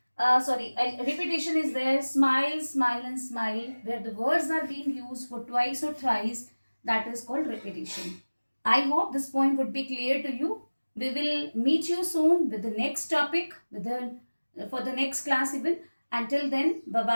Repetition is there. Smile, smile and smile. Where the words are being used for twice or thrice. That is called repetition. I hope this point would be clear to you. We will meet you soon with the next topic, for the next class even. Until then,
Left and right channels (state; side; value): inverted; both; correlation -1.00